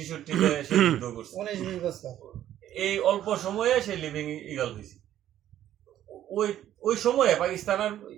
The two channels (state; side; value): quieter; left; 11.9 dB